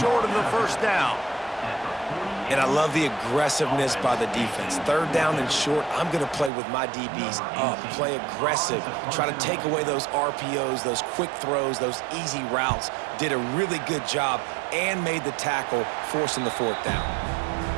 of the first down. And I love the aggressiveness by the defense. 3rd down and short, I'm going to play with my DBs up. Play aggressive. Try to take away those RPOs, those quick throws, those easy routes. Did a really good job and made the tackle, forcing the 4th down.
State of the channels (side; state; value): left; drops out; at 6.5 s